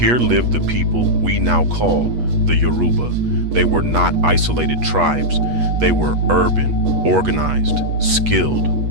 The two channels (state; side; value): late; left; 8.3 ms